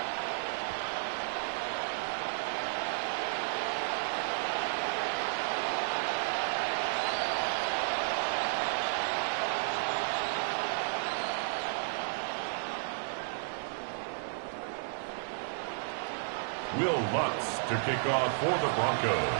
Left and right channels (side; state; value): left; silent; digital silence